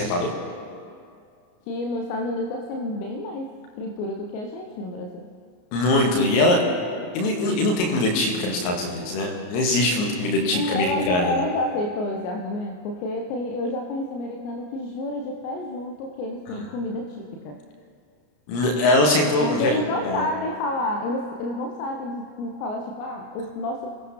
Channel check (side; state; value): right; late; 33 ms